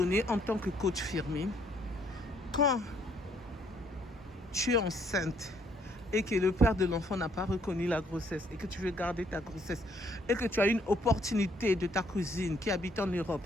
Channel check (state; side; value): normal; both; correlation 0.67